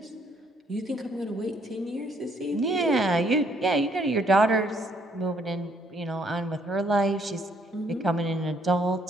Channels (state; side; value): normal; both; correlation 0.68